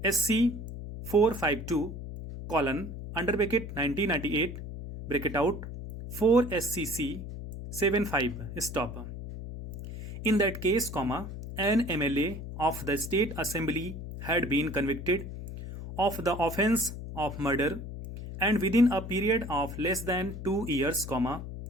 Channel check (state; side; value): noise; left; hum, 9 dB below the sound